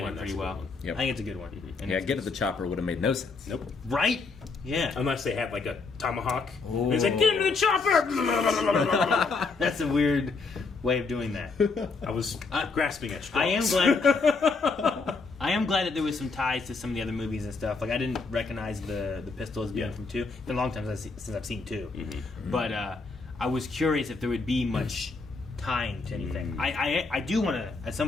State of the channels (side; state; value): right; quieter; 4.2 dB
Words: one, in that's pretty a good well. one. Yep. I think it's a good one. And Yeah, it's- Get at the Chopper would have made no sense. Nope. right? Yeah. Unless they had like a tomahawk. Ooh. And it's like, get into the chopper! That's a weird way of doing that. I was grasping at straws. I am glad. I am glad that there was some ties to some of the other movies and stuff. Like I didn't recognize the pistol as being Yeah. from 2. It's been a long time since I've seen 2. Mm-hmm. But I was curious if there would be much tying to anything. I do want to at